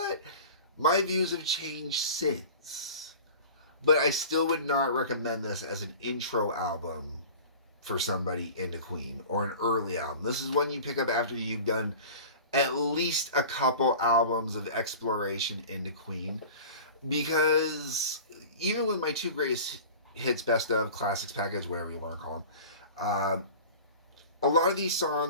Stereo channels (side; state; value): both; inverted; correlation -0.38